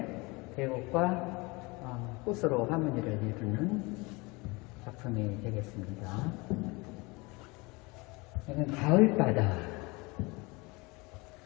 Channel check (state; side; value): quieter; right; 25.7 dB